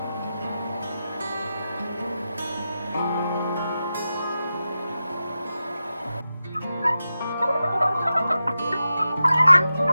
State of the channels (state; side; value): inverted; both; correlation -0.91